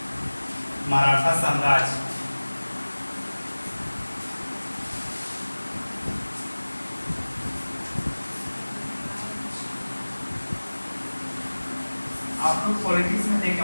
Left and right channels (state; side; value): inverted; both; correlation -1.00